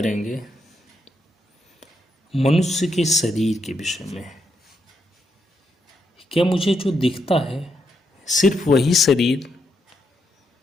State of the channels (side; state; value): both; normal; correlation 0.80